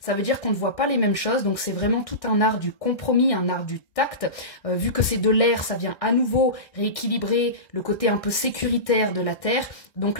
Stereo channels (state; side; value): late; right; 1.6 ms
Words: veut dire qu'on ne voit pas les mêmes choses. Donc c'est vraiment tout un art du compromis, un art du tact. Vu que c'est de l'air, ça vient à nouveau rééquilibrer le côté un peu sécuritaire de la Terre. Donc